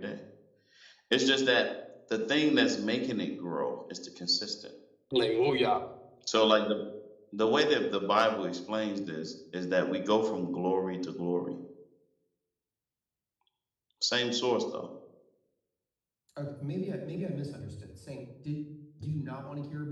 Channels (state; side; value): identical; both; correlation 1.00